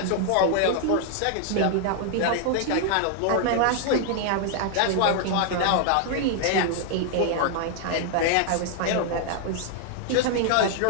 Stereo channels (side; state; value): both; different; correlation 0.00